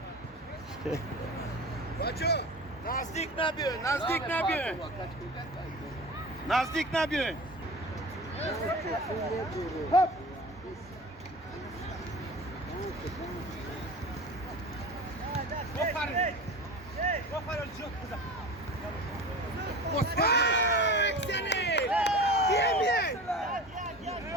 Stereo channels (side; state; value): both; normal; correlation 0.34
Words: بچه نزدیک نبیاین نزدیک نبیاین نزدیک نبیاین